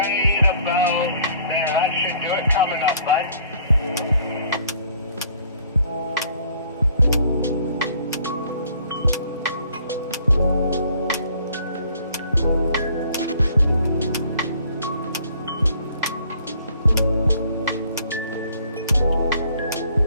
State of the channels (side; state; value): both; inverted; correlation -0.58